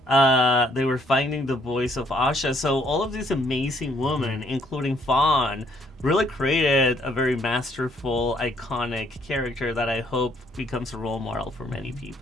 they were finding the voice of Asha. So all of these amazing women, including Fawn, really created a very masterful, iconic character that I hope becomes a role model for many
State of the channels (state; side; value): normal; both; correlation 0.66